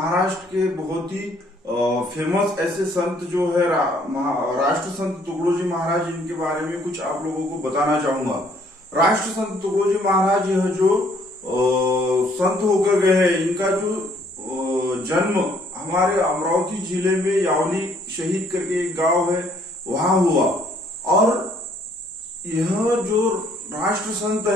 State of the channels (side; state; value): both; normal; correlation 0.64